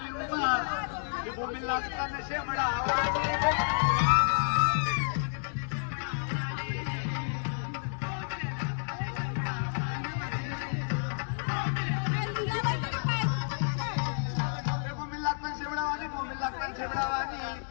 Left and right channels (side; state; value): right; silent; digital silence